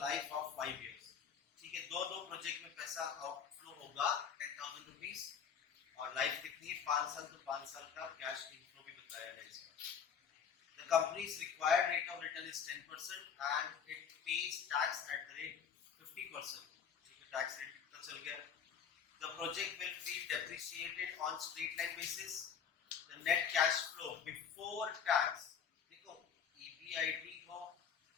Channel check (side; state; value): right; quieter; 7.3 dB